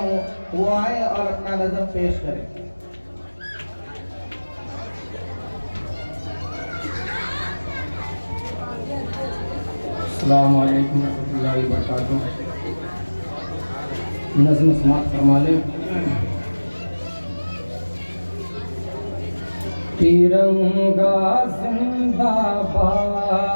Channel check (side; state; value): both; inverted; correlation -1.00